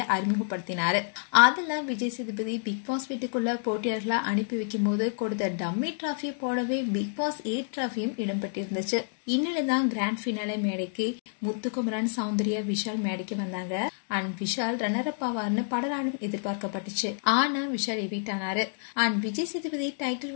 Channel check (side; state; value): right; silent; digital silence